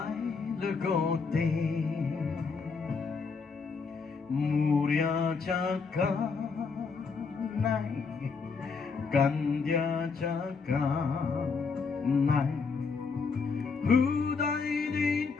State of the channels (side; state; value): right; quieter; 4.9 dB